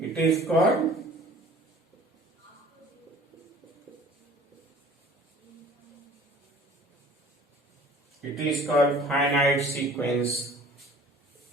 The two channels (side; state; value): both; normal; correlation 0.49